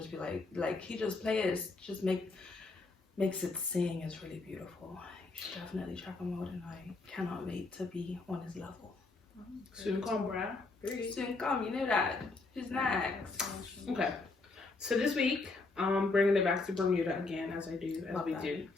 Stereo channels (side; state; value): right; quieter; 3.7 dB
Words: be like he just plays, just makes it sing. Is really beautiful. You should definitely check him out and I cannot wait to be on his level. Soon come, bruh. Soon come, you know that. Who's next? Okay. So this week, bringing it back to Bermuda again, as I do, do.